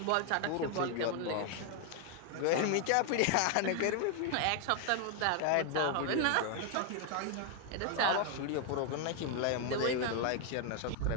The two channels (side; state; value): both; different; correlation 0.00